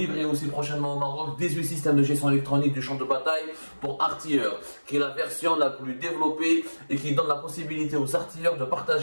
aussi prochainement au Maroc 18 systèmes de gestion électronique du champ de bataille pour artilleurs, qui est la version la plus développée et qui donne la possibilité aux artilleurs de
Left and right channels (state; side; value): inverted; both; correlation -1.00